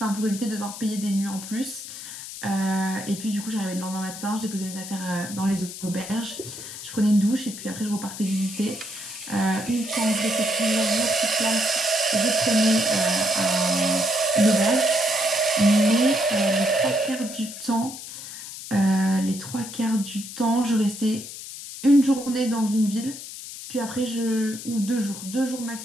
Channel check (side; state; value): left; noise; hiss, 11 dB below the sound